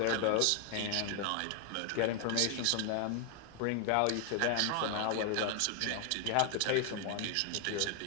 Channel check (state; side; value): different; both; correlation 0.00